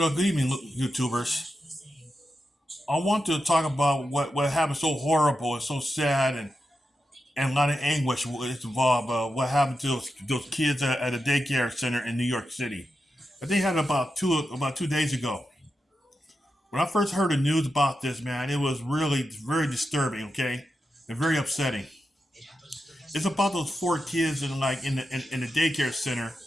good evening, YouTubers. I want to talk about what happened so horrible and so sad and a lot of anguish is involved. What happened to those kids at a daycare center in New York City? I think it happened about 2 days ago. When I first heard the news about this, man, it was really very disturbing. Okay, and very upsetting. It's about those four kids in the daycare center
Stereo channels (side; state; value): both; normal; correlation 0.89